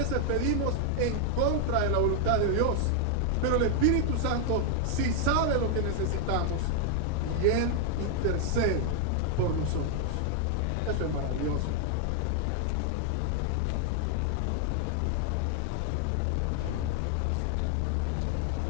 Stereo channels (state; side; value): different; both; correlation 0.00